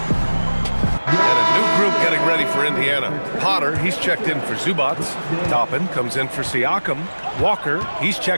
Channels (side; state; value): both; inverted; correlation -1.00